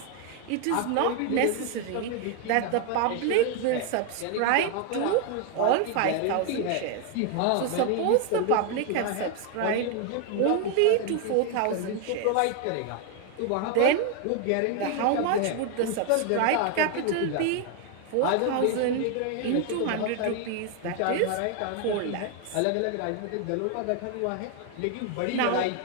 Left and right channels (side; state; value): both; different; correlation 0.01